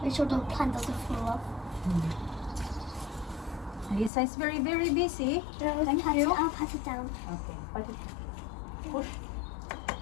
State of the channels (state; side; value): drops out; right; at 4.1 s